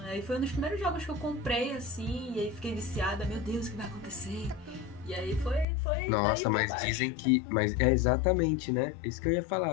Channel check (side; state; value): right; drops out; at 5.7 s